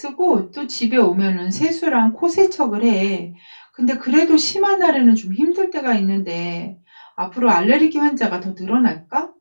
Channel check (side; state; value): both; inverted; correlation -1.00